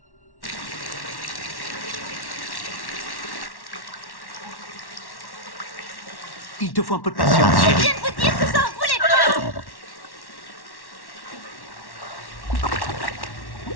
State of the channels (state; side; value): late; right; 1.1 ms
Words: Il te faut un peu de patience, chérie. Je viens de vous dire que ça en voulait pas!